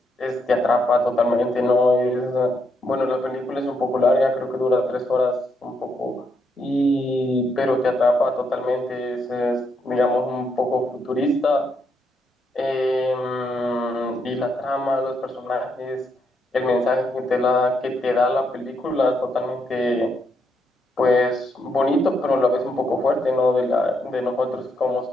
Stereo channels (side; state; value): both; normal; correlation 0.78